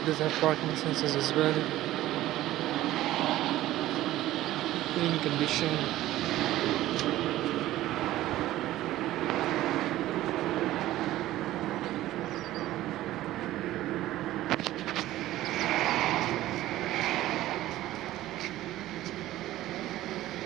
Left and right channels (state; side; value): quieter; left; 15.1 dB